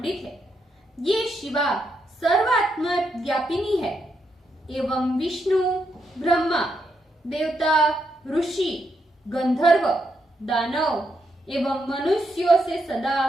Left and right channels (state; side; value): normal; both; correlation 0.80